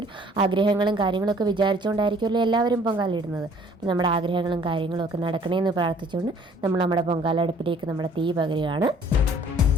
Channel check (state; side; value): normal; both; correlation 0.56